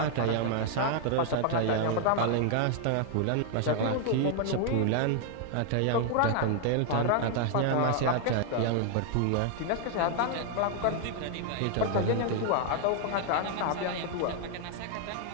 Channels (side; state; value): both; different; correlation 0.00